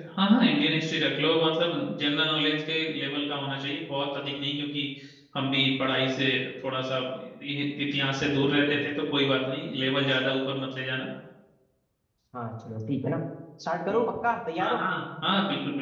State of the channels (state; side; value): identical; both; correlation 1.00